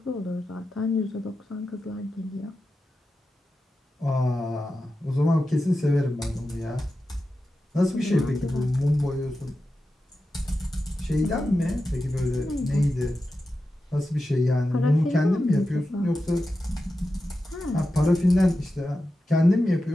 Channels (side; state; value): both; normal; correlation 0.91